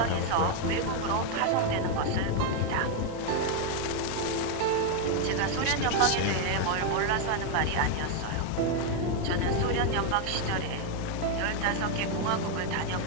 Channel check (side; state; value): both; different; correlation 0.01